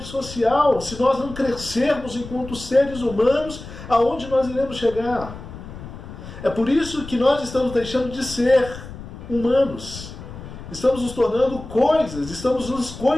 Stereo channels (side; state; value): left; noise; rumble, 13 dB below the sound